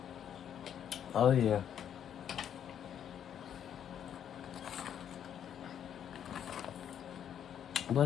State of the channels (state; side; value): quieter; right; 9.3 dB